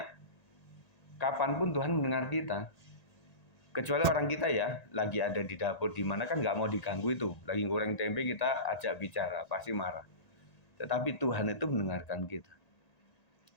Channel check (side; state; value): right; late; 1.9 ms